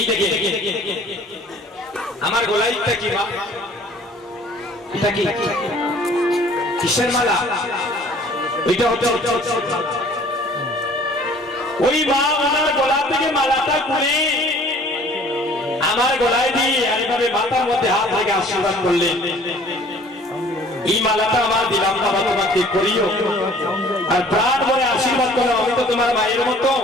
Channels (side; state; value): both; normal; correlation 0.52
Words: দেখে আমার গলাইটা কি মা, এটা কি কিসের মালা? ওইটা হচ্ছে ওই মা আমার গলা থেকে মালাটা খুলে আমার গলায় দিয়ে এইভাবে মাথার মধ্যে হাত রেখে আশীর্বাদ করলেন। এই মালাটা আমার দিলাম না, তোমাকে করিও আর প্রাণ ভরে আশীর্বাদ করো, আমি তো তোমার মায়ের মতো,